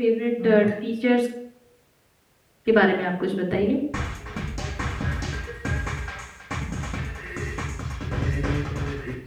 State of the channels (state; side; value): identical; both; correlation 1.00